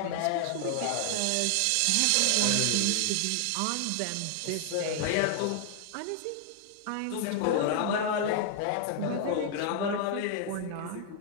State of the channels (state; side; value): different; both; correlation 0.00